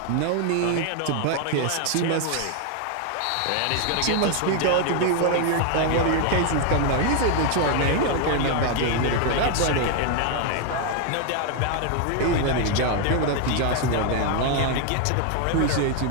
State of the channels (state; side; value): different; both; correlation 0.00